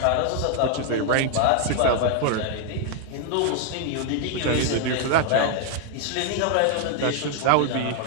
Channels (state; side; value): different; both; correlation 0.00